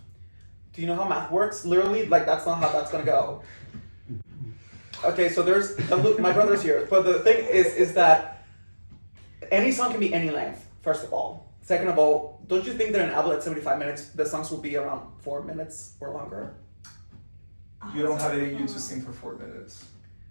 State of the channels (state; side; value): inverted; both; correlation -1.00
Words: Do you know how math works? Literally, like that's not how that's gonna go. Okay, so there's my brother's here, but the thing is that any song can be any length. First of all, second of all, don't you think that an album at 75 minutes, the songs will be around 4 minutes or longer? You don't have it in you to sing for 4 minutes.